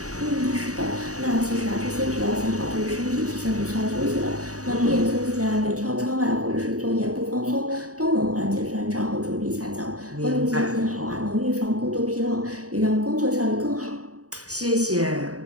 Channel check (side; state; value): left; late; 0.66 ms